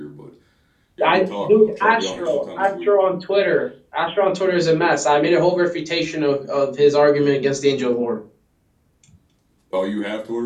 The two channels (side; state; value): both; identical; correlation 1.00